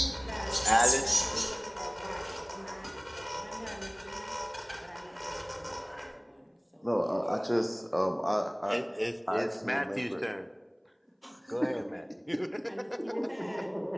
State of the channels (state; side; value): identical; both; correlation 1.00